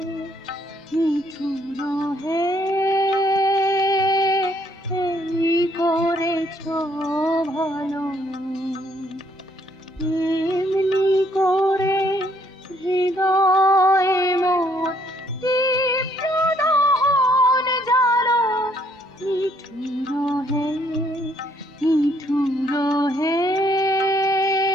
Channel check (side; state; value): both; normal; correlation 0.67